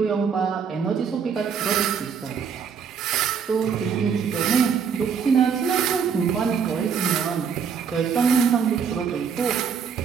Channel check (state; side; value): quieter; left; 6.7 dB